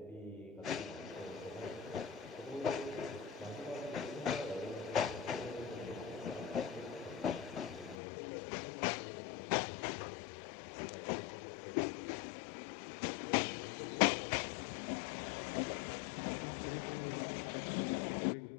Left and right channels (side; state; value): right; drops out; at 8.0 s